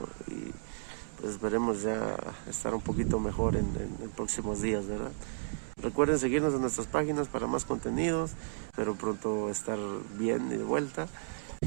y pues esperemos ya estar un poquito mejor en próximos días, ¿verdad? Recuerden seguirnos en nuestras páginas para más contenidos, pero pronto estar bien y de vuelta.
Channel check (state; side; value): silent; left; digital silence